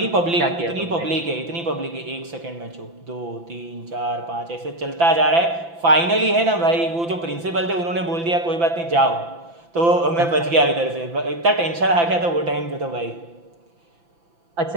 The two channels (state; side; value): late; left; 5.9 ms